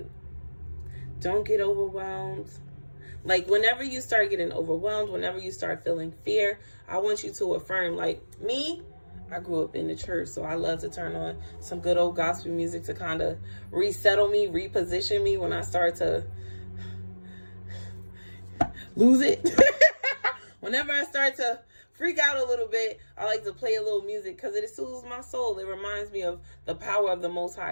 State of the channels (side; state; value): both; inverted; correlation -1.00